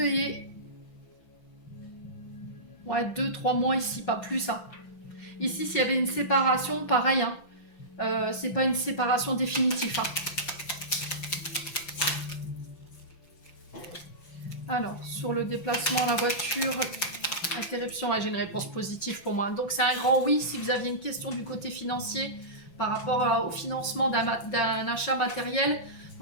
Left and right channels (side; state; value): right; late; 5.9 ms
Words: Ouais, 2-3 mois ici, pas plus. Hein. Ici, s'il y avait une séparation, pareil. Hein. C'est pas une séparation définitive. Hein. Alors, sur le déplacement à la voiture, interruption, j'ai une réponse positive pour moi. Donc, c'est un grand oui si vous aviez une question du côté financier par rapport au financement d'un achat matériel.